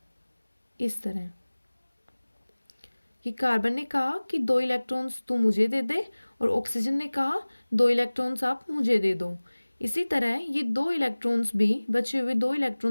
इस तरह कि कार्बन ने कहा कि 2 इलेक्ट्रॉन्स तू मुझे दे दे और ऑक्सीजन ने कहा 2 इलेक्ट्रॉन्स आप मुझे दे दो। इसी तरह ये 2 इलेक्ट्रॉन्स भी, बचे हुए 2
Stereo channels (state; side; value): inverted; both; correlation -1.00